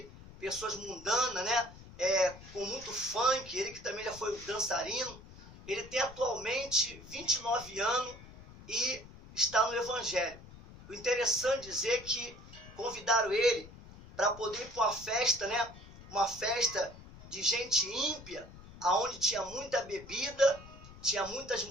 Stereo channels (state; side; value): noise; left; rumble, 18 dB below the sound